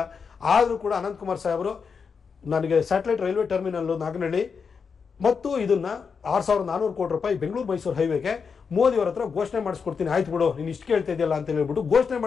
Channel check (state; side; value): quieter; right; 5.8 dB